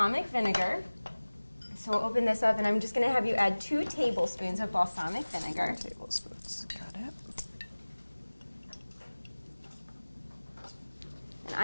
vinegar. So we'll open this up, and I'm just going to have you add 2 tablespoons of balsamic vinegar. 2 tablespoons. Got it. And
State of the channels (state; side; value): inverted; both; correlation -1.00